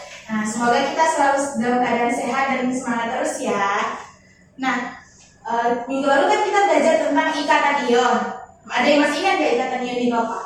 Nah, semoga kita selalu dalam keadaan sehat dan semangat terus ya. Nah, minggu lalu kan kita belajar tentang ikatan ion. Ada yang masih ingat nggak ikatan ion itu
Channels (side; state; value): both; identical; correlation 1.00